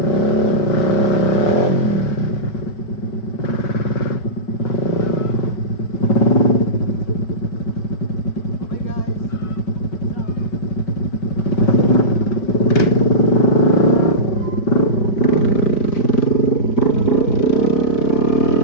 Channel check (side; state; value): right; late; 5.3 ms